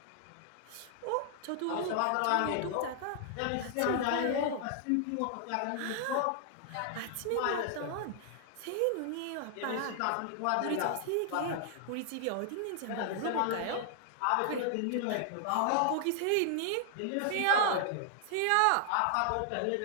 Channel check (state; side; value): different; both; correlation 0.00